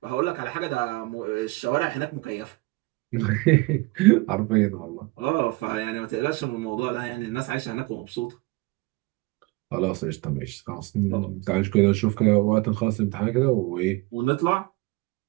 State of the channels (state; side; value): quieter; left; 23.2 dB